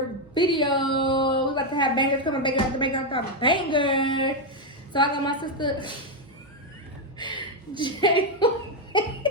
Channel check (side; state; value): both; normal; correlation 0.04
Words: video. We about to have bangers coming, banger after banger after banger. So I got my sister J.